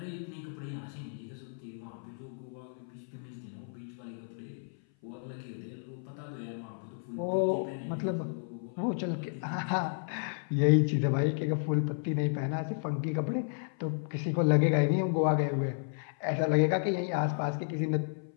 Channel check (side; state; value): right; silent; 55 dB below the other